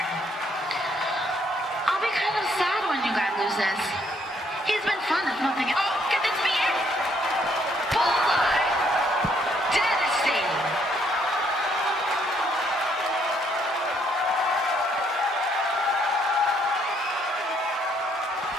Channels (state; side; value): normal; both; correlation 0.69